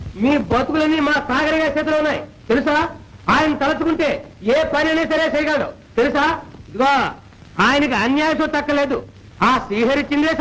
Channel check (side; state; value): both; identical; correlation 1.00